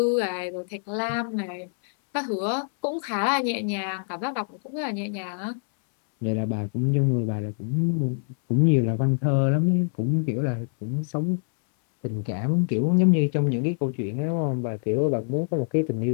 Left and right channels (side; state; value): right; silent; 62 dB below the other